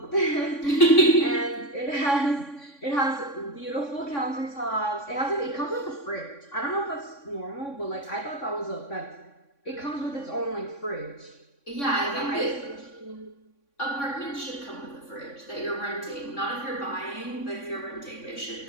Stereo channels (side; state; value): right; late; 3.6 ms